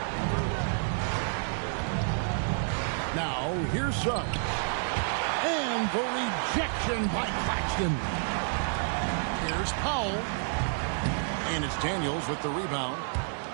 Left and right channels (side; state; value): left; silent; digital silence